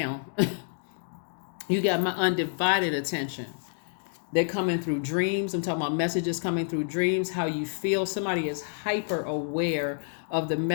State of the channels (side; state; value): right; silent; digital silence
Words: You got my undivided attention. They're coming through dreams. I'm talking about messages coming through dreams, how you feel. Somebody is hyper aware of the